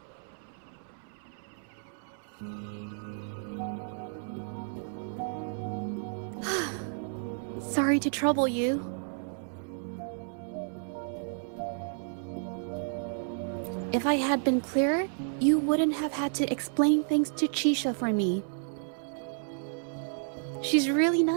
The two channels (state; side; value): silent; left; 57 dB below the other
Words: Sorry to trouble you. If I had been clearer, you wouldn't have had to explain things to Chisha for me. She's really